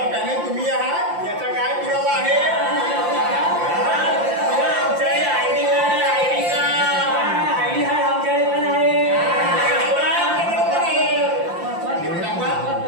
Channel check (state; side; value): late; left; 5.7 ms